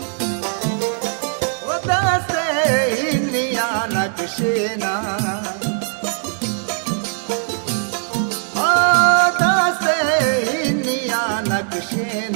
नक्शेना दासे हिनिया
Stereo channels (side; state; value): left; silent; digital silence